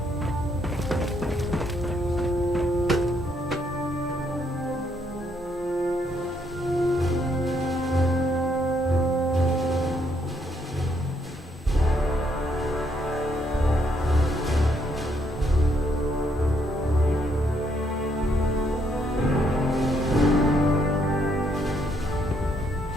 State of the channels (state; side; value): normal; both; correlation 0.73